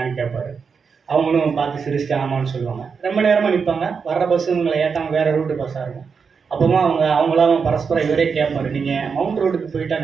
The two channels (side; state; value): left; quieter; 5.8 dB